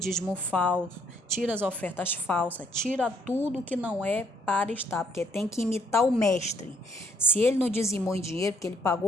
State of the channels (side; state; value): both; normal; correlation 0.66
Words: falso, tira as ofertas falsas, tira tudo que não é para estar, porque tem que imitar o mestre. Se ele não dizimou em dinheiro, porque ele